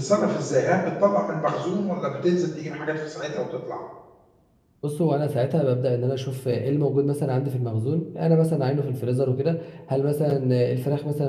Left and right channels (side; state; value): both; identical; correlation 1.00